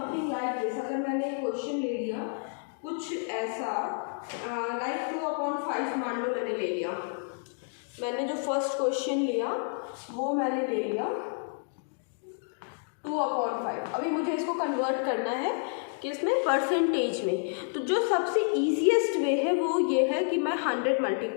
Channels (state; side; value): silent; right; 58 dB below the other